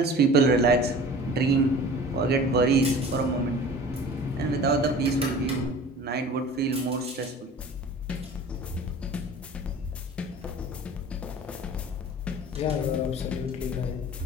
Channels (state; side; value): normal; both; correlation 0.42